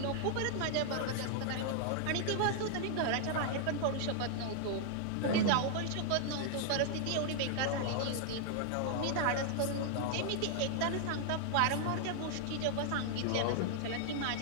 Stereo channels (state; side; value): different; both; correlation 0.00